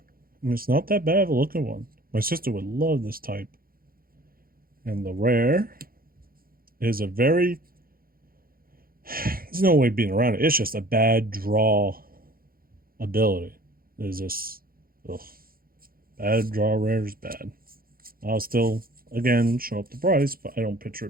And it's not that bad of a looking one. My sister would love this type. And the rare is a very... There's no way being around it. It's just a bad draw ability. There's just... Ugh. Bad draw rare is bad. I'll still, again, show up the price, but I don't picture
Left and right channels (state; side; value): late; left; 0.42 ms